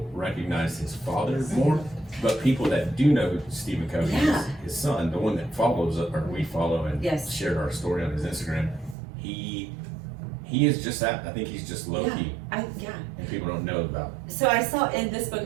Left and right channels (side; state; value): left; drops out; at 9.0 s